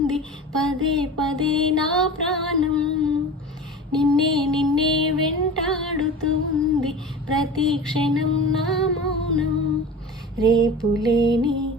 పదే పదే నా ప్రాణం. నిన్నే నిన్నే వెంటాడుతూ ఉంది ప్రతి క్షణం నా మౌనం. రేపులేని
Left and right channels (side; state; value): both; normal; correlation 0.34